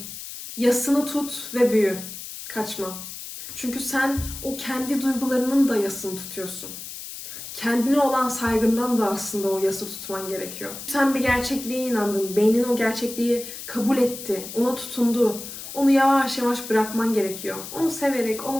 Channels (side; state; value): left; noise; hiss, 10 dB below the sound